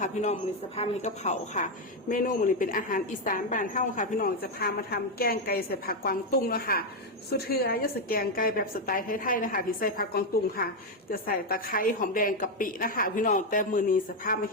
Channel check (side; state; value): both; normal; correlation 0.05